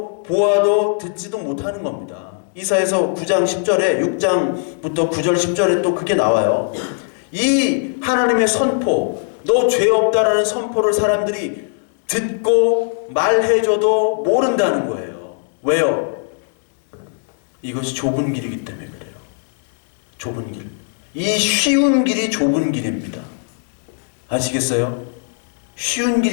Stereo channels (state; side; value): silent; right; 66 dB below the other